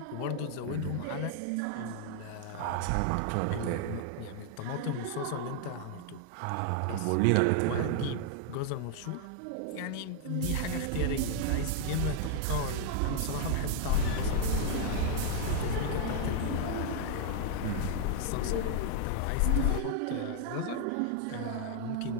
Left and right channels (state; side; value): different; both; correlation 0.00